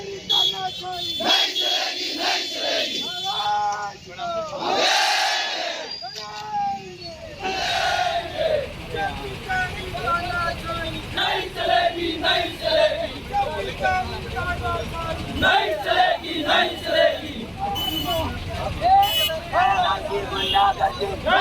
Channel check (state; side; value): identical; both; correlation 1.00